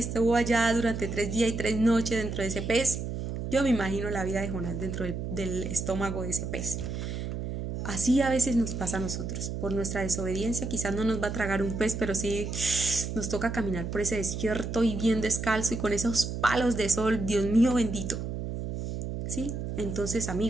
allá durante 3 días y 3 noches dentro de ese pez. Yo me imagino la vida de Jonás dentro del estómago de ese pez. Así a veces nos pasa a nosotros. Por nuestra desobediencia quizás no nos va a tragar un pez, pero sí nos toca caminar por ese desierto y bien descalzo y con esos palos de sol, Dios mío bendito. ¿Sí? Entonces,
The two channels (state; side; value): noise; right; hum, 5 dB below the sound